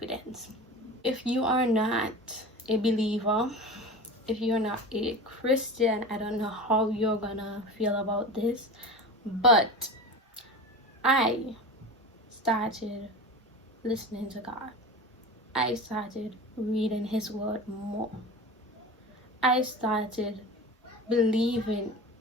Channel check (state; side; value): normal; both; correlation 0.31